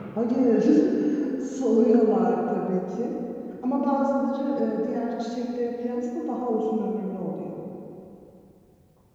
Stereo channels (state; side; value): identical; both; correlation 1.00